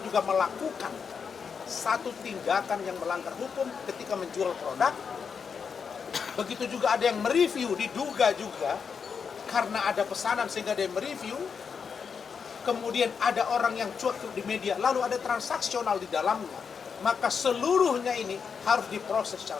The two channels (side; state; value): right; quieter; 6.2 dB